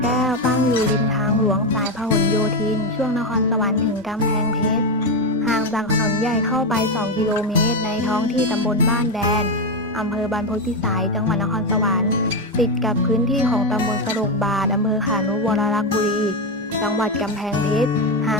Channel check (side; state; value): both; normal; correlation 0.09